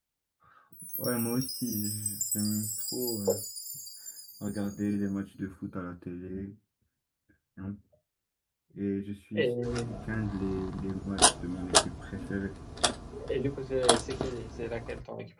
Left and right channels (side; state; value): both; identical; correlation 1.00